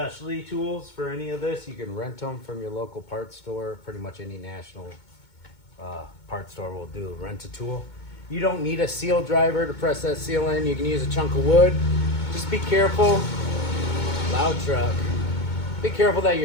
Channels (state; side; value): late; right; 2.2 ms